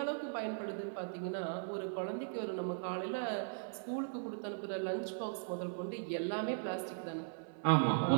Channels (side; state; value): left; silent; 52 dB below the other